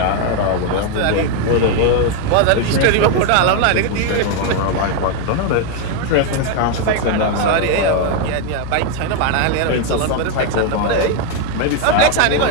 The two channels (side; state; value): both; different; correlation 0.01